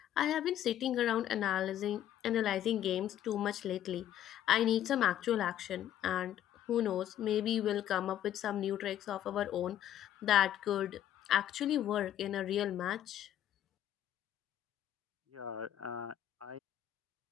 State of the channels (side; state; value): right; quieter; 11.4 dB